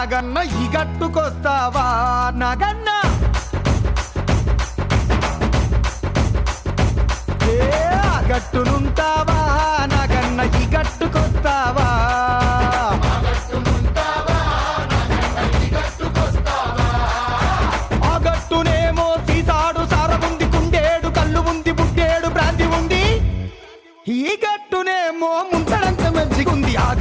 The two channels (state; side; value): identical; both; correlation 1.00